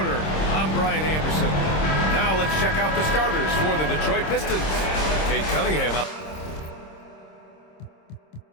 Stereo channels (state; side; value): late; right; 26 ms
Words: I'm Brian Anderson. Now let's check out the starters for the Detroit Pistons. Cade Cunningham up.